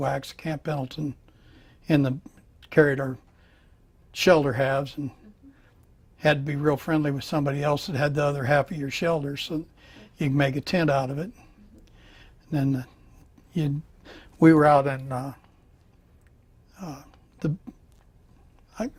at Camp Pendleton, carried our shelter halves, and had to be real friendly with somebody else that had the other half of your shelter so you can make a tent out of it. And then we were out in the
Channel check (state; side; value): identical; both; correlation 1.00